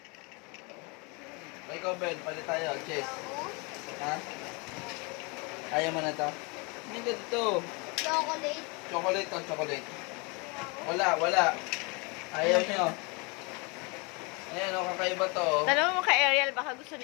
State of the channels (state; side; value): quieter; right; 29.9 dB